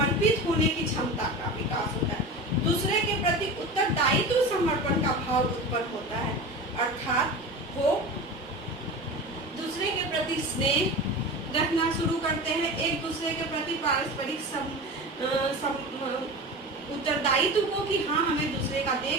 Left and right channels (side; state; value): both; normal; correlation 0.30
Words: होने की क्षमता का विकास होता है, दूसरे के प्रति उत्तरदायित्व समर्पण का भाव उत्पन्न होता है, अर्थात वो दूसरे के प्रति स्नेह रखना शुरू करते हैं, एक दूसरे के प्रति पारस्परिक उत्तरदायित्व को कि हाँ, हमें दूसरे का